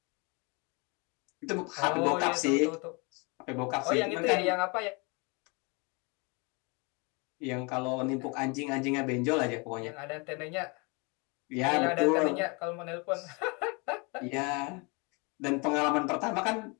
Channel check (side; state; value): right; quieter; 30.4 dB